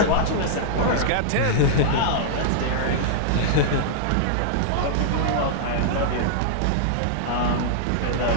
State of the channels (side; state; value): both; different; correlation -0.02